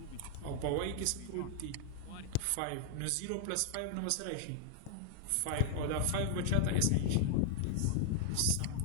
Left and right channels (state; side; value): different; both; correlation 0.00